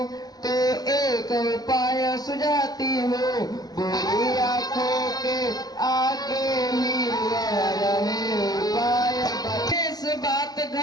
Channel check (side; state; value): right; late; 0.19 ms